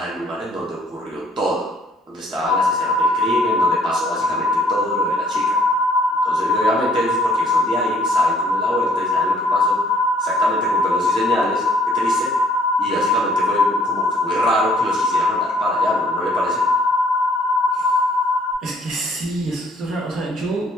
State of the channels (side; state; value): both; normal; correlation 0.60